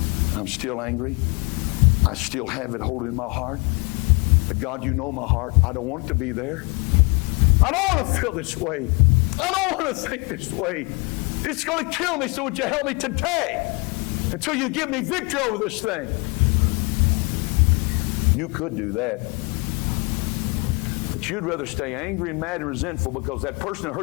I'm still angry. I still have it holding in my heart. But God, you know my heart. I don't want it to be there. I don't want to feel this way. I don't want to think this way. It's going to kill me, so would you help me today until you give me victory over this thing? You could do that. But you'd rather stay angry and mad and resentful because that person that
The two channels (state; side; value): quieter; right; 31.0 dB